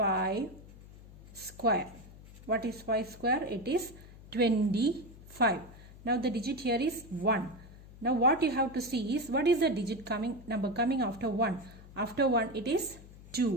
square. What is 5 square? It is 25. Now the digit here is 1. Now what you have to see is what is the number coming after 1. After 1 it is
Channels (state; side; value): noise; left; hum, 19 dB below the sound